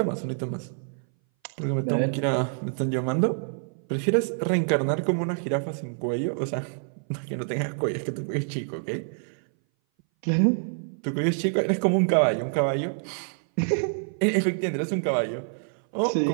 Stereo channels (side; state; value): left; silent; 59 dB below the other